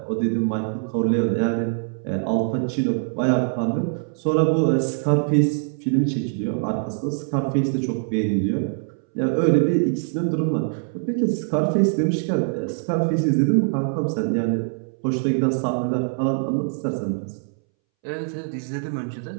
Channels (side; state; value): left; silent; 63 dB below the other